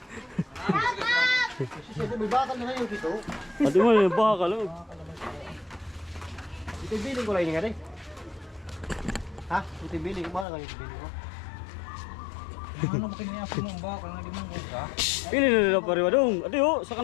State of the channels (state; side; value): drops out; right; at 10.5 s